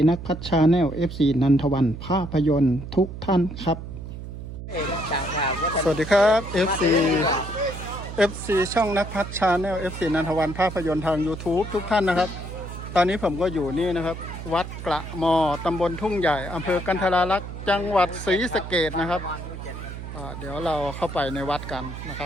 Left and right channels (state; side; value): noise; right; hum, 10 dB below the sound